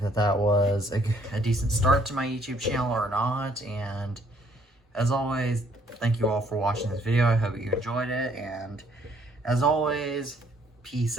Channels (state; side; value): normal; both; correlation 0.65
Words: was a decent start to my YouTube channel or not? And as always, thank you all for watching this video. I hope you enjoyed it, and as always, peace